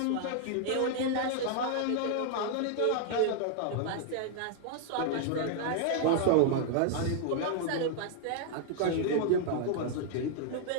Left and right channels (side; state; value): both; different; correlation 0.00